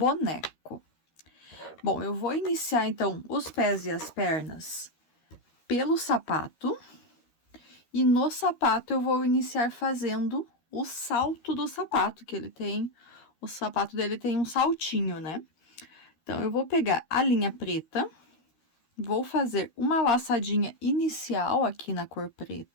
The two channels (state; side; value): late; right; 13 ms